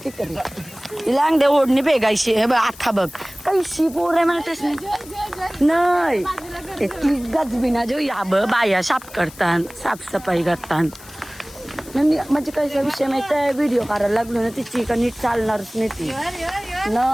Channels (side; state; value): left; noise; hiss, 20 dB below the sound